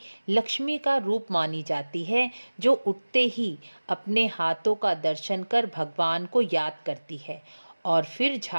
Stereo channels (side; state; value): both; inverted; correlation -1.00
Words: लक्ष्मी का रूप मानी जाती है जो उठते ही अपने हाथों का दर्शन कर भगवान को याद करती है और फिर